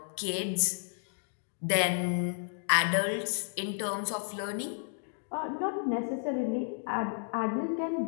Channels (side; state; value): right; silent; digital silence